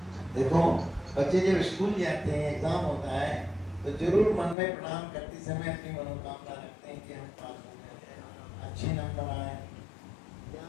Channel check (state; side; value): drops out; right; at 4.5 s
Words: देखो बच्चे जब स्कूल जाते हैं, एग्जाम होता है, तो जरूर मन में प्रणाम करते समय अपनी मनोकामना रखते हैं कि हम पास हो जाए, अच्छे नंबर आए,